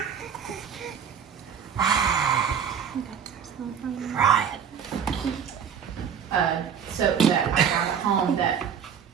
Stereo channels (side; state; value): left; quieter; 7.8 dB